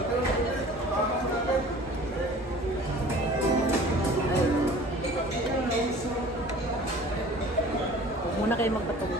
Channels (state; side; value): normal; both; correlation 0.45